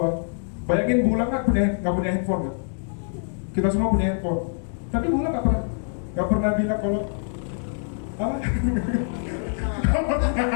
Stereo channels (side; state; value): right; silent; digital silence